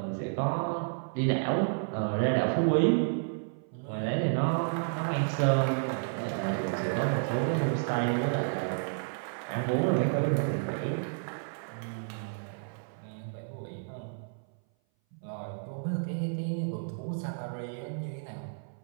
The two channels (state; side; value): silent; left; 57 dB below the other